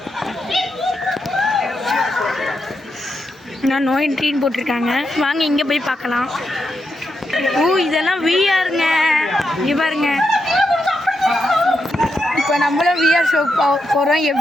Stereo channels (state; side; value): normal; both; correlation 0.84